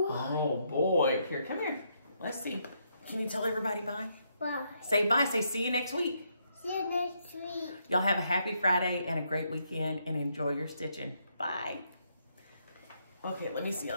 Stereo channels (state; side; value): inverted; both; correlation -0.76